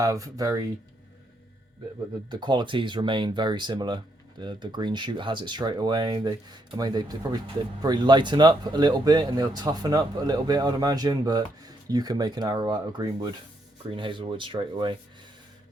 very. The qualities remain very similar. The green shoot has it straight away. They probably lighten up a little bit and they'll toughen up a little bit, I'd imagine. But you can make an arrow out of green hazelwood straight away.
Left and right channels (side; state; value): both; normal; correlation 0.76